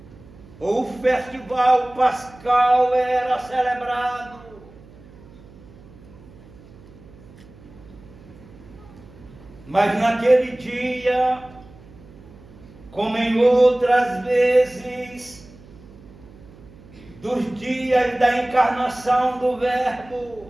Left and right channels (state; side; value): noise; right; hum, 22 dB below the sound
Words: ou o festival pascal era celebrado. Mas naquele dia, como em outras vezes, dos dias da encarnação do